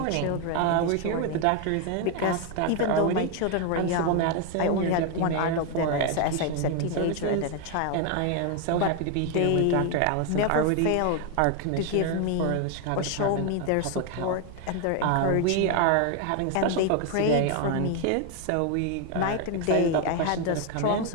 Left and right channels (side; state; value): both; different; correlation 0.01